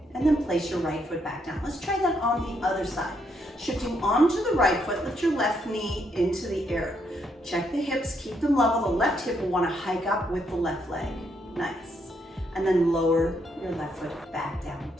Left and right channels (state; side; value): normal; both; correlation 0.75